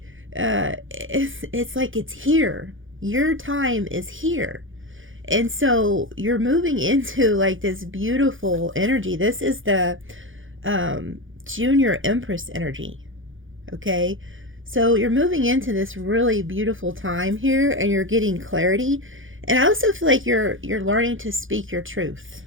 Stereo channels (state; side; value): late; left; 0.58 ms